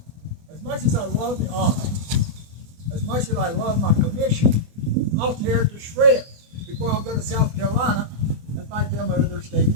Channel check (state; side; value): late; left; 24 ms